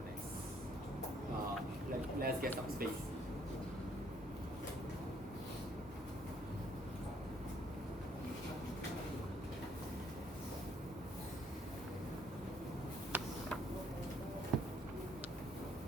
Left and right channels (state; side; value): normal; both; correlation 0.66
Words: next. Let's get some space.